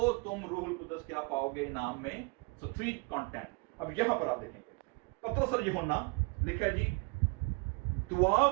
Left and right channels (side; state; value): left; quieter; 29.8 dB